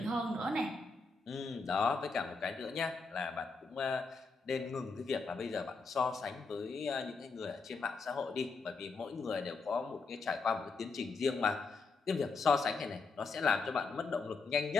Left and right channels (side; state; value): right; quieter; 4.3 dB